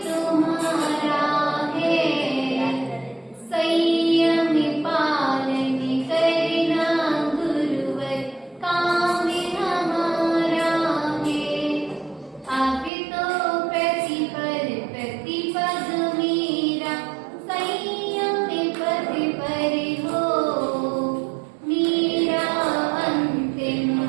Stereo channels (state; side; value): drops out; left; at 12.9 s